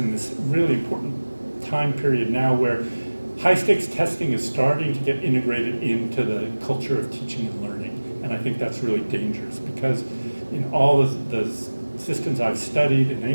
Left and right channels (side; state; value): both; inverted; correlation -1.00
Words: this really important time period now where high-stakes testing is starting to get integrated into the culture of teaching and learning. And I think that's really dangerous because in all the systems I've studied in